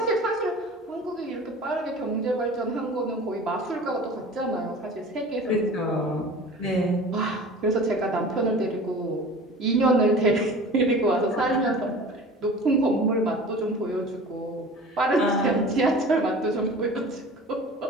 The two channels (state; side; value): normal; both; correlation 0.40